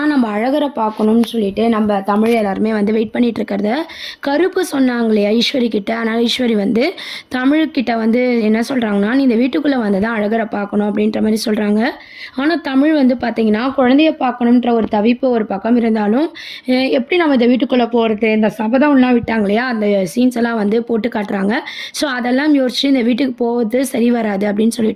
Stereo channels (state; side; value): identical; both; correlation 1.00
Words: நம்ம அழகரை பார்க்கணும்னு சொல்லிட்டு நம்ம தமிழ் எல்லாருமே வந்து வெயிட் பண்ணிகிட்ருக்கிறத கருப்பு சொன்னாங்களே ஐஸ்வரி கிட்ட. அதனால் ஐஸ்வரி வந்து தமிழ்கிட்ட வந்து என்ன சொல்கிறாங்கன்னா, "நீ இந்த வீட்டுக்குள்ளே வந்து தான் அழகரை பார்க்கணும்" அப்படின்ற மாதிரி சொல்கிறாங்க. ஆனால் தமிழ் வந்து பார்த்திங்கன்னா, குழந்தைய பார்க்கணுன்ற ஒரு தவிப்பு ஒரு பக்கம் இருந்தாலும், எப்படி நம்ம இந்த வீட்டுக்குள்ளே போகிறது, இந்த சபதம்லாம் விட்டாங்க இல்லையா, அந்த சீன்ஸ் எல்லாம் வந்து போட்டு காட்டுறாங்க. ஸோ அதெல்லாம் யோசிச்சு இந்த வீட்டுக்கு போவது சரி வராது அப்படின்னு